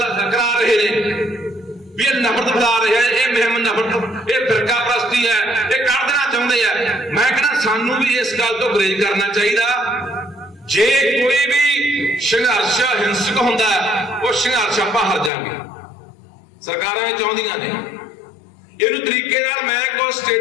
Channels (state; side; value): drops out; right; at 15.3 s